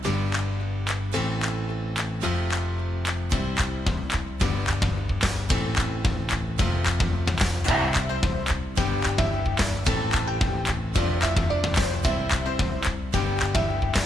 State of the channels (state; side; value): normal; both; correlation 0.83